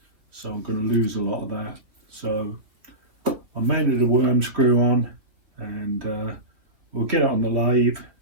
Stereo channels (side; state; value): left; late; 3.4 ms